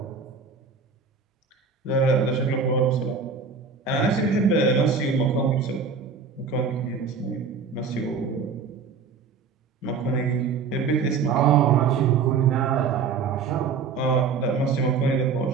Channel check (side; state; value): left; quieter; 5.4 dB